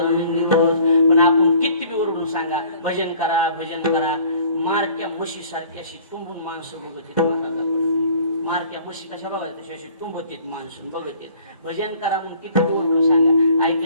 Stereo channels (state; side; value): inverted; both; correlation -0.53